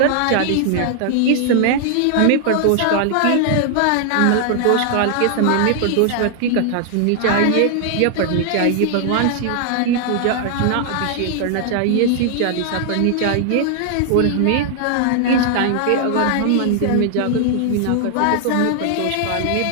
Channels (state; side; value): different; both; correlation 0.00